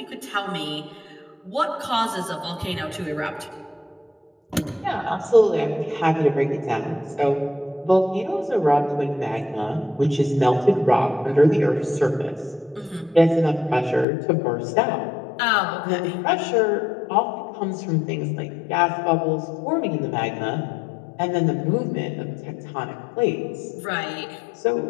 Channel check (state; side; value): drops out; right; at 14.1 s